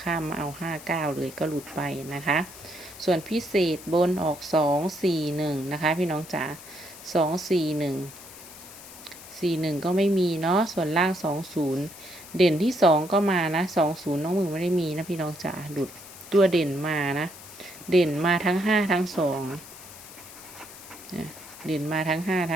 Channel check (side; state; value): left; noise; hiss, 17 dB below the sound